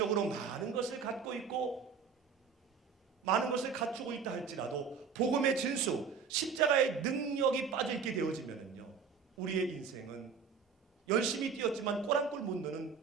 많은 것을 갖고 있고 많은 것을 갖추고 있다 할지라도 복음의 진수, 십자가의 능력이 빠져있게 되어지면요, 우리의 인생은 열심히 뛰었지만 꼬락골 못 넣는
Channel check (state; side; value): quieter; left; 6.0 dB